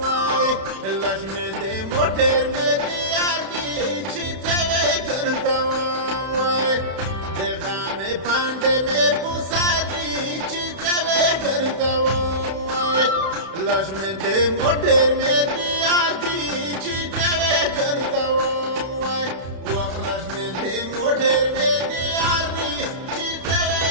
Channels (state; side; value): late; left; 31 ms